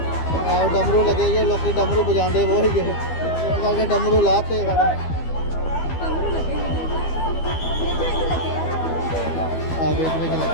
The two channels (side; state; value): right; late; 12 ms